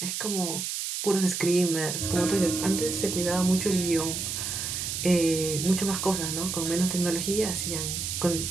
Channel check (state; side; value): noise; right; hiss, 3 dB below the sound